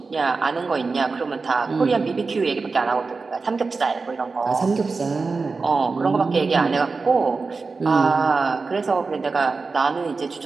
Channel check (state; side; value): quieter; left; 4.2 dB